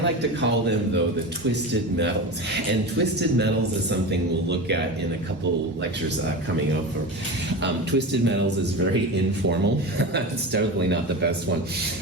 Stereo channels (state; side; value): normal; both; correlation 0.26